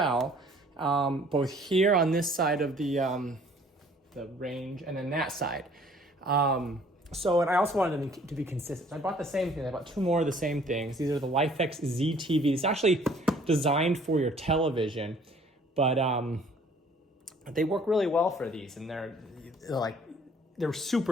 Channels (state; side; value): normal; both; correlation 0.56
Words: both here on this side of the range and then that side. And I also wanted them to be consistent. So I bought the same thing. I bought two more of the same things. These are the Lifx ZTV. It's actually designed for your television, but they work really well for these, and they're